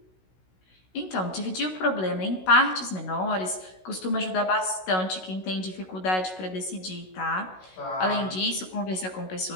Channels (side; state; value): right; late; 16 ms